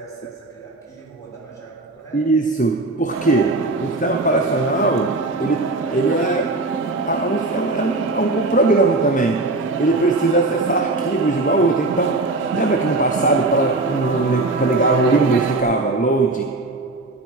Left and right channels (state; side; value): quieter; left; 3.0 dB